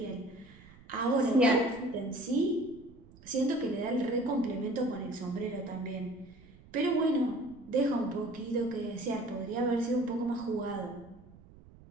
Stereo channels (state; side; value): noise; right; rumble, 22 dB below the sound